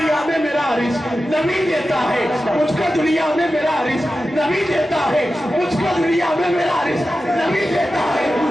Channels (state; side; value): normal; both; correlation 0.93